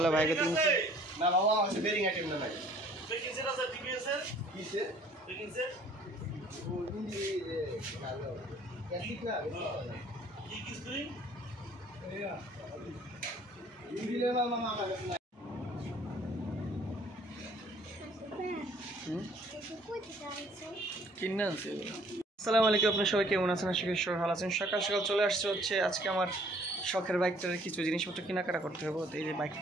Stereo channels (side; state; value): both; normal; correlation 0.57